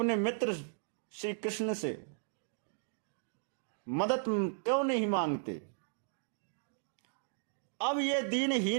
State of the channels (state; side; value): silent; left; digital silence